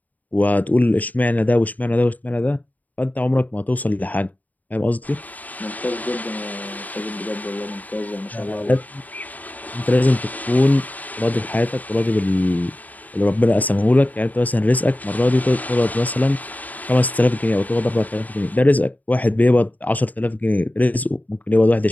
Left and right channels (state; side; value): late; right; 0.078 ms